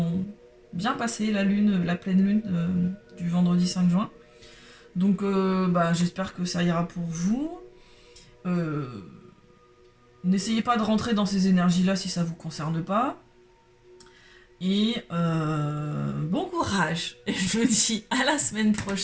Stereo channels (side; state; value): both; identical; correlation 1.00